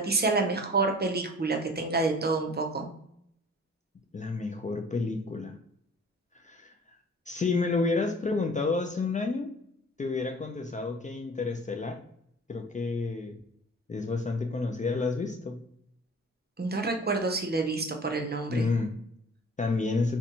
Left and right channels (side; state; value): both; normal; correlation 0.47